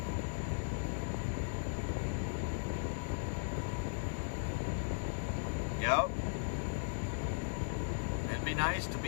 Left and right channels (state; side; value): silent; right; digital silence